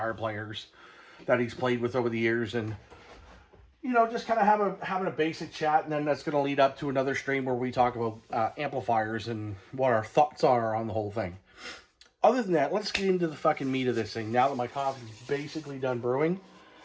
players that he's played with over the years, and you know, just kind of having a basic chat, and then that's going to lead up to another stream where we talk about amplifiers and what our thoughts are on the whole thing. Other than that, let's get into the fucking meat of this thing. Now that my coffee's basically done brewing,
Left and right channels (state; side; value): identical; both; correlation 1.00